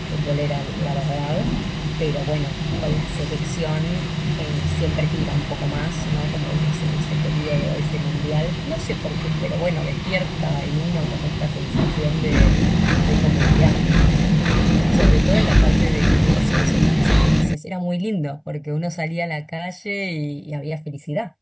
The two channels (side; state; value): both; identical; correlation 1.00